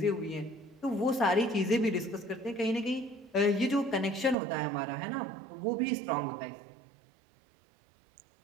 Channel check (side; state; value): left; drops out; at 4.4 s